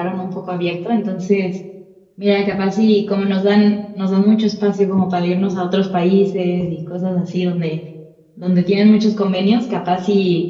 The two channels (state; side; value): identical; both; correlation 1.00